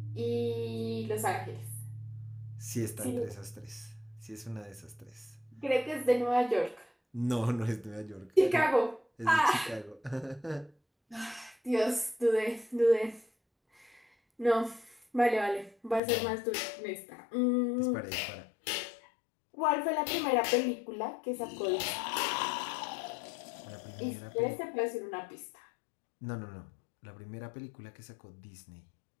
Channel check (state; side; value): drops out; right; at 16.0 s